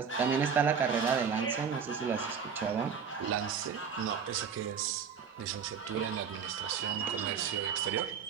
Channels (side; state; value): left; quieter; 6.7 dB